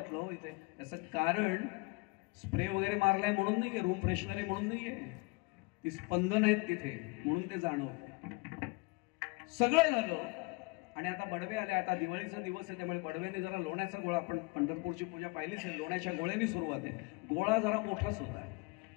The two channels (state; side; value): quieter; right; 27.2 dB